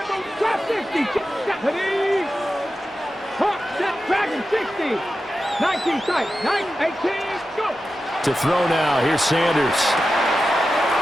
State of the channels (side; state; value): both; normal; correlation 0.92